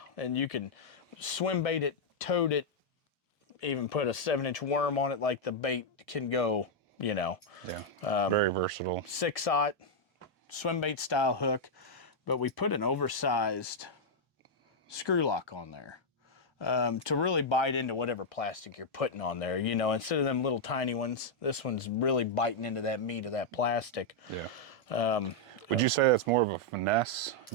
you can swim bait it, toad it, even put a 7-inch worm on it, like the bait can go, very versatile. 6-aught swim bait style hook, but we put an oversized screw lock on there to really bite into whatever plastic you're putting on there. Instead of them little tiny ones, this one's really biting into that meat of that plastic. Yeah. Would you say that's more of a finesse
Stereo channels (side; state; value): both; normal; correlation -0.03